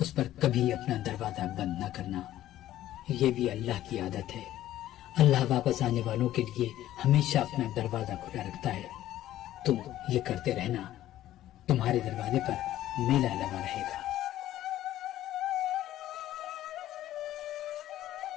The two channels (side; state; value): right; quieter; 13.5 dB